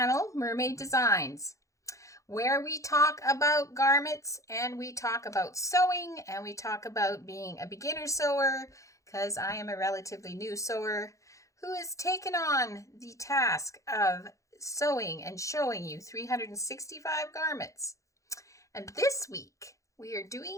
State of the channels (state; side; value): late; right; 0.15 ms